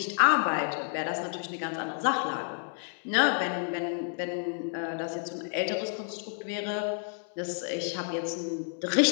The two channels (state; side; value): silent; right; 58 dB below the other